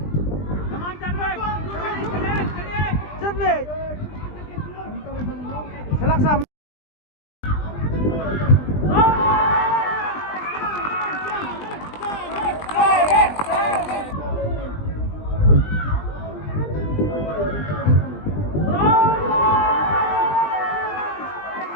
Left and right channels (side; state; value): right; late; 20 ms